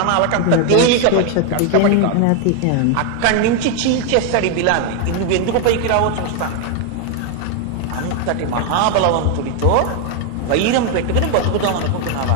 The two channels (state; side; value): different; both; correlation 0.01